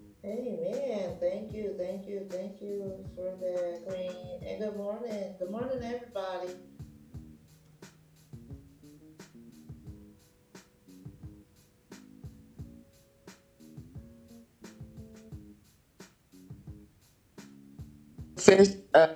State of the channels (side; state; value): both; identical; correlation 1.00